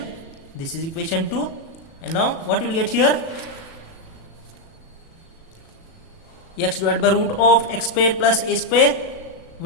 This is equation 2, and now what we will get here? X divided by root of x square plus a square,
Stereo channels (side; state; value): right; late; 37 ms